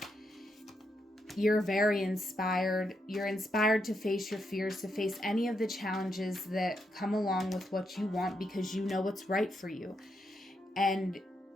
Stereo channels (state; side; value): normal; both; correlation 0.81